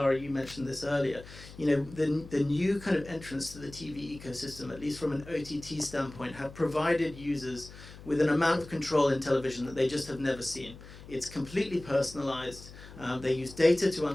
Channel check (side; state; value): left; noise; hum, 17 dB below the sound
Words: you mentioned this earlier. You know, the new kind of entrants to the TV ecosystem, at least from an OTT standpoint, have provided users with an amount of control in television that they just have never seen. It's completely personalized. They use data to